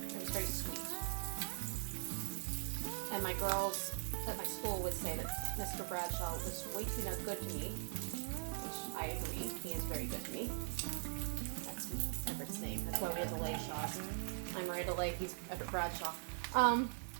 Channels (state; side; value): silent; left; digital silence